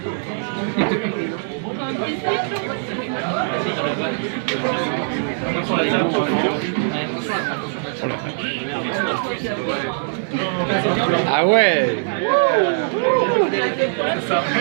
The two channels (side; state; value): left; silent; digital silence